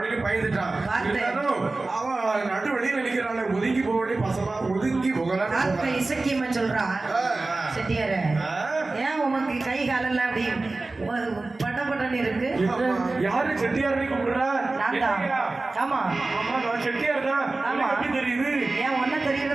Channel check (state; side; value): quieter; left; 3.3 dB